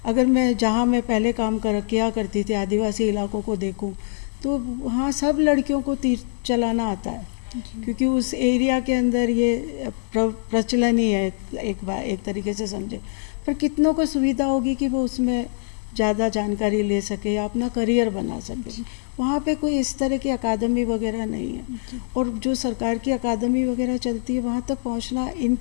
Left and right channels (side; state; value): right; silent; digital silence